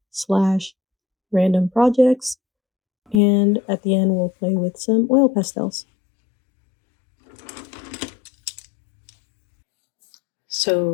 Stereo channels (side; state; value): right; drops out; at 3.2 s